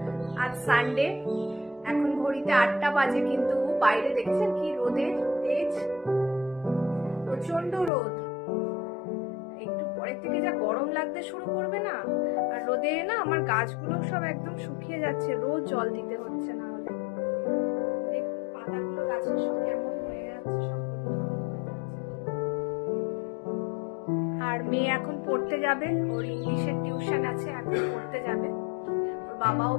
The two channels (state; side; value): drops out; right; at 7.9 s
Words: আজ সানডে, এখন ঘড়িতে 8টা বাজে, কিন্তু বাইরে দেখছেন কি রোদের তেজ, প্রচন্ড রোদ। একটু পরের থেকে যা গরম লাগতে শুরু করবে না, আর রোদে না আমার গাছগুলো সব একদম শুকিয়ে যাচ্ছে, রোজ জল দিতে হচ্ছে, না হলে দেখুন পাতাগুলো গাছের সব কেমন হয়ে যাচ্ছে, সব আর মেয়ে এখন পড়তে যাবে, ওর ইংলিশের টিউশন আছে, এখন পড়তে যাবে। ওর বাবাও